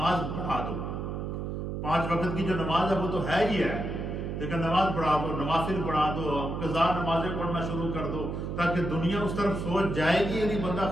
پڑھا دو۔ 5 وقت کی جو نماز ہے وہ تو ہے ہی ہے، لیکن نماز پڑھا دو، نوافل پڑھا دو، قضا نمازیں پڑھنا شروع کر دو، تاکہ دنیا اس طرف سوچ جائے گی یعنی بندہ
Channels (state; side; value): noise; right; hum, 4 dB below the sound